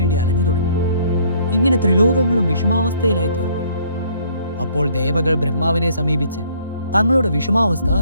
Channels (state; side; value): inverted; both; correlation -0.61